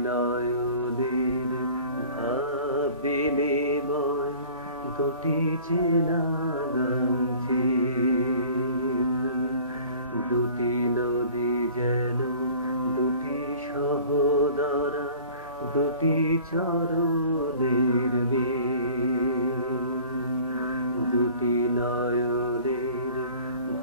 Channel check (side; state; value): both; inverted; correlation -0.47